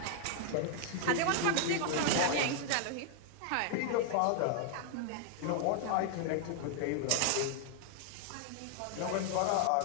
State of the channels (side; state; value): both; different; correlation 0.00